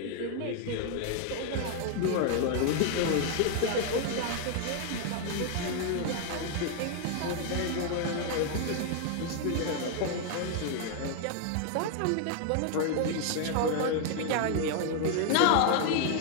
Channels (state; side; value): different; both; correlation 0.00